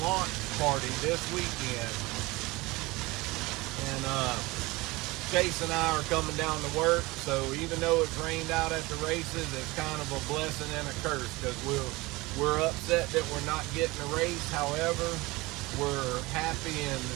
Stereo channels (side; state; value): left; quieter; 22.1 dB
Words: launch party this weekend. And Chase and I are coming down to work, so even though it's rained out at the races, it's kind of a blessing and a curse, because we're upset that we're not getting a race. However, we're happy and